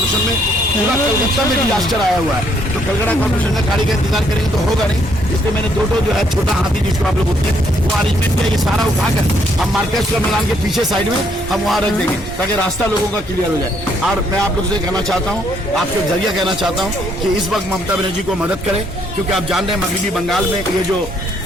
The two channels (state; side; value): normal; both; correlation 0.69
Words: में पूरा कलकत्ता में डिजास्टर आया हुआ है, तो कलकत्ता कॉर्पोरेशन का गाड़ी का इंतजार करेंगे तो होगा नहीं। इसलिए मैंने 2 जो है छोटा हाथी जिसको आप लोग बोलते हैं, वो अरेंजमेंट किया। ये सारा उठाकर हम मार्केट का मैदान के पीछे साइड में हम वहाँ रख देंगे ताकि रास्ता लोगों का क्लियर हो जाए। और मैं आप लोग से कहना चाहता हूँ, आपके जरिए कहना चाहता हूँ कि इस वक्त ममता बनर्जी को मदद करें, क्योंकि आप जान रहे हैं मगरबी बंगाल में ये जो